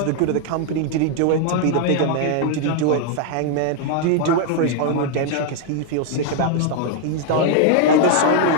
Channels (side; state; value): both; different; correlation 0.00